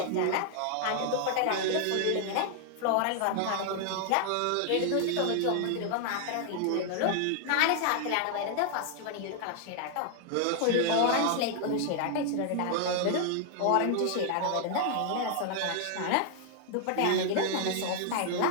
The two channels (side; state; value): both; different; correlation 0.00